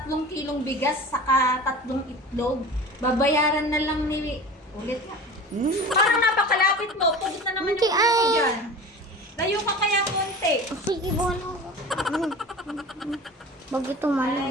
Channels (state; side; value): normal; both; correlation 0.36